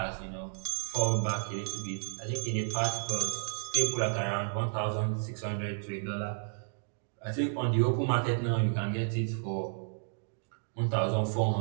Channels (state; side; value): silent; left; digital silence